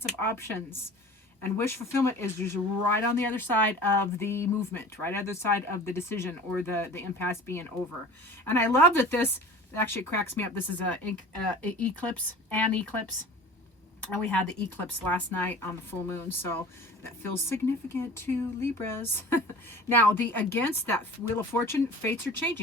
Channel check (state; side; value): normal; both; correlation 0.41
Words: of options. And wish fulfillment is just right on the other side of the movement, right on the other side of the decision or the impasse being over. And I love that this actually cracks me up. This is an eclipse. And we had the eclipse last night on the full moon, so that feels significant to Libras. Now, against that Wheel of Fortune, fates are